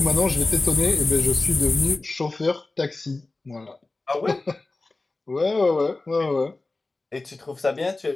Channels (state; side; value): quieter; right; 3.3 dB